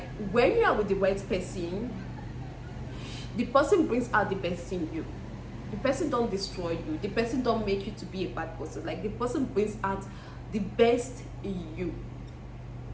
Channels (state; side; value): identical; both; correlation 1.00